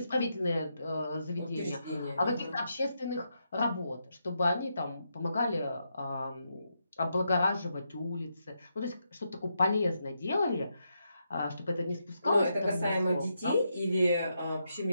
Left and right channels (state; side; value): inverted; both; correlation -0.82